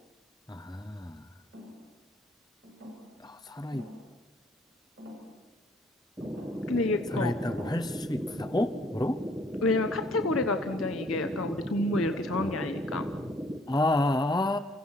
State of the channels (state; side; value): normal; both; correlation 0.62